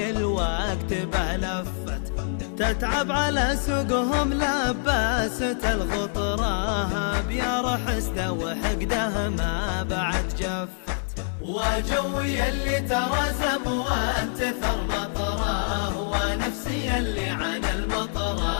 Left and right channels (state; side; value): silent; right; digital silence